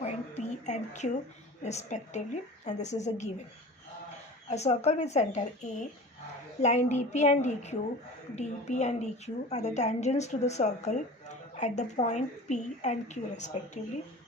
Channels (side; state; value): both; normal; correlation 0.38